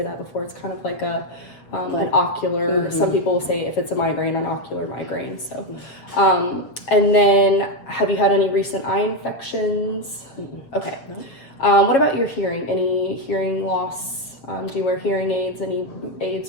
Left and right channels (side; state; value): right; late; 7.5 ms